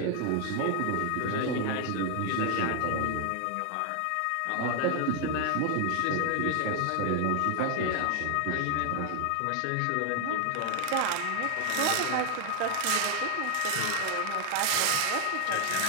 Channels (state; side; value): different; both; correlation 0.00